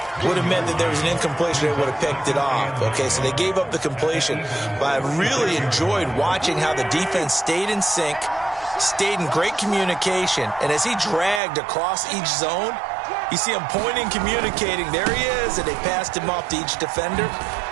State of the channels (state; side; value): drops out; left; at 11.4 s